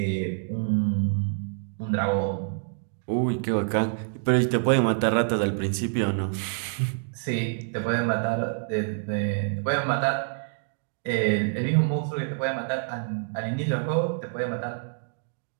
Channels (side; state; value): left; silent; digital silence